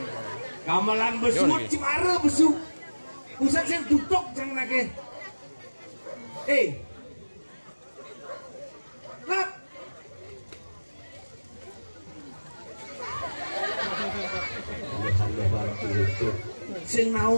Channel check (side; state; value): both; inverted; correlation -1.00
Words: gamelan besut cimara besuk pusat sing duduk jang nake lap sing